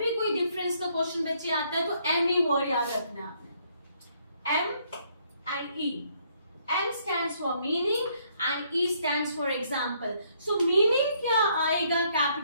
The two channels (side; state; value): both; inverted; correlation -0.69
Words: कोई डिफरेंस का क्वेश्चन बच्चे आता है तो एम ई वर्ड याद रखना है आपने, M and E. M stands for meaning and E stands for example. So meaning क्या आएगा